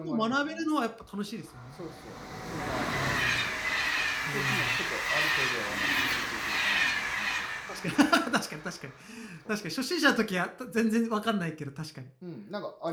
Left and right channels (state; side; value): identical; both; correlation 1.00